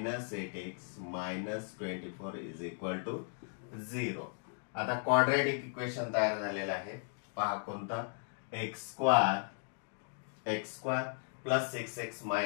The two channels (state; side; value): silent; right; 54 dB below the other